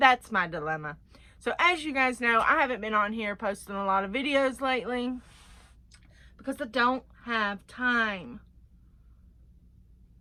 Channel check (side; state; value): both; identical; correlation 1.00